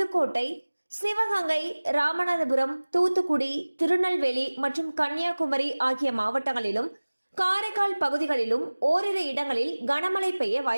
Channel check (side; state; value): both; inverted; correlation -1.00